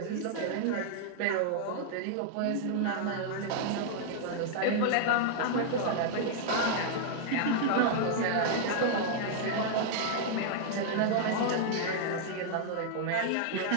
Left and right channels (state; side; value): different; both; correlation -0.01